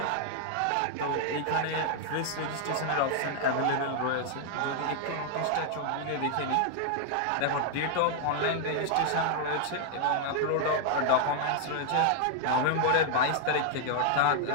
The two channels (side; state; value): both; different; correlation 0.00